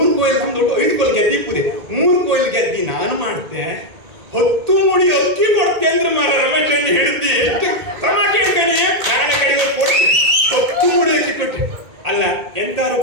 ಕೊಯ್ಲು ನಮ್ದು 5 ಕೊಯ್ಲು ಗೆದ್ದಿ ಪೂರಿ 3 ಕೊಯ್ಲು ಗೆದ್ದಿ ನಾನು ಮಾಡ್ತೆ 10 ಮುಡಿ ಅಕ್ಕಿ ಕೊಡ್ತೆ ಅಂದ್ರೆ ಮಾರ ರಮೇಶ್ ಅಣ್ಣ ಹೇಳ್ತಿ ಎಷ್ಟು ಟಮಾಟೆ ಅಂತಾನೆ ನಾಳೆ ಕಡೆಗೆ ಕೊಡ್ತೆ 10 ಮುಡಿ ಅಕ್ಕಿ ಕೊಟ್ಟೆ. ಅಲ್ಲ ಎಂತಾರು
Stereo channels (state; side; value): late; left; 1.8 ms